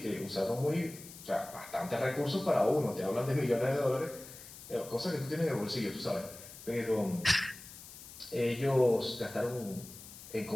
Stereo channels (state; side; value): noise; left; hiss, 16 dB below the sound